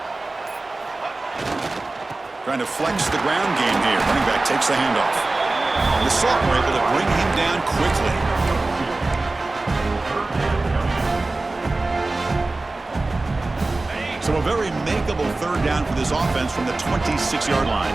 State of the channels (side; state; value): left; quieter; 3.2 dB